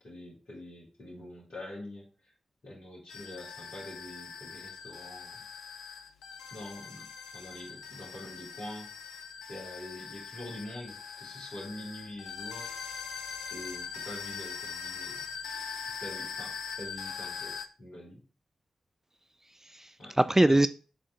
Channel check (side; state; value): both; normal; correlation 0.91